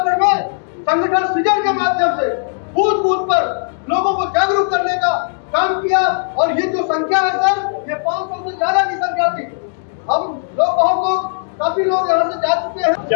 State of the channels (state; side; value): silent; right; digital silence